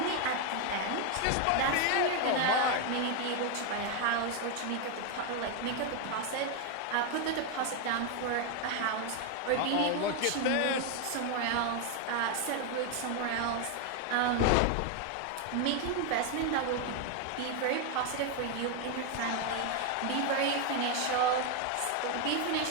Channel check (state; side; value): different; both; correlation 0.01